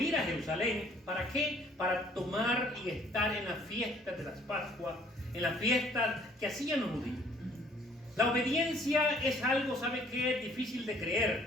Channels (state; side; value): normal; both; correlation 0.59